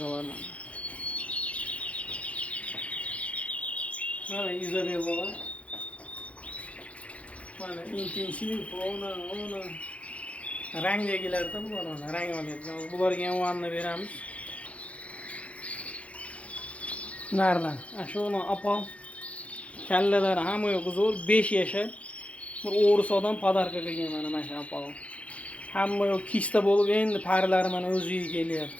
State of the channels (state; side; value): late; right; 0.064 ms